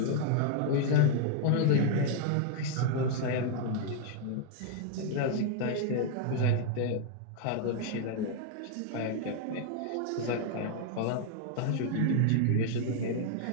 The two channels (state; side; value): different; both; correlation 0.00